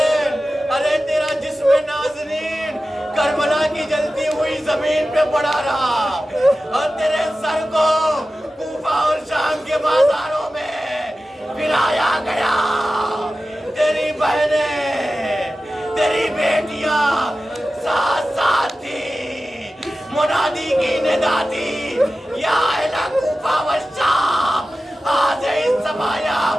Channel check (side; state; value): both; normal; correlation 0.94